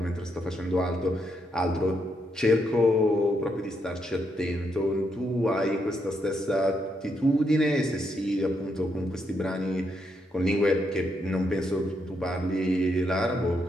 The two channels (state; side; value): normal; both; correlation 0.79